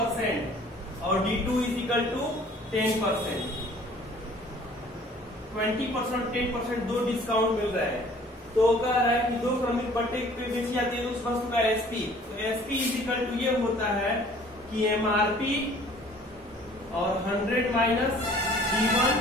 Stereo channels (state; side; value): normal; both; correlation 0.53